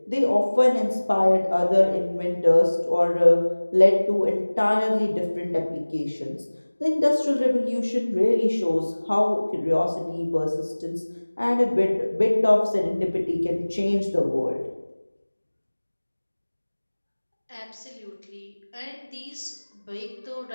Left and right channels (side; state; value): both; inverted; correlation -1.00